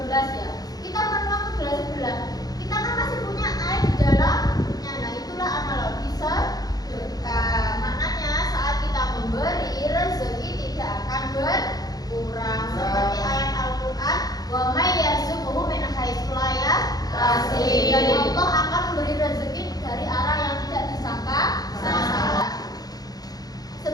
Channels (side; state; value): right; late; 0.19 ms